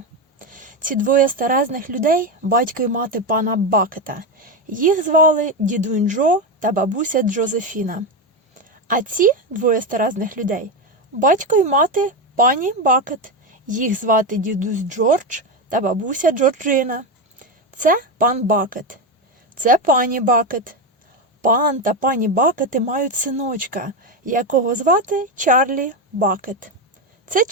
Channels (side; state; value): both; normal; correlation 0.13